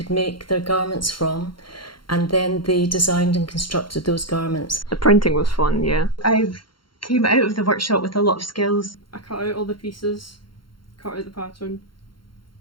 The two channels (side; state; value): right; late; 0.73 ms